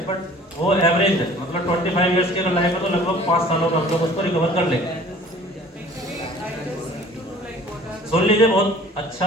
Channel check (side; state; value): both; normal; correlation 0.49